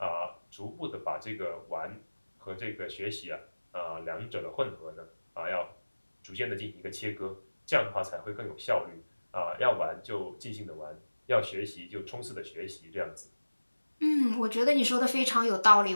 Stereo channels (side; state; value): both; inverted; correlation -1.00